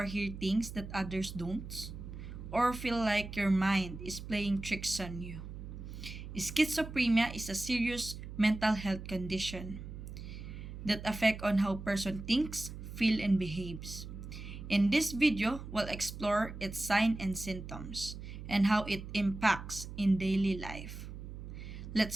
hear things that others don't? Or feel like your mind is playing tricks on you? Schizophrenia is a serious mental health condition that affect on how person thinks, feel, and behaves. In this video, we'll explore its signs and symptoms and how it impacts in daily life.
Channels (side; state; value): right; noise; hum, 10 dB below the sound